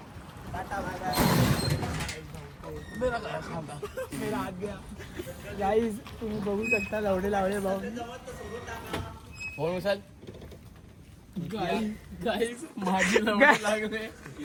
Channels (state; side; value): identical; both; correlation 1.00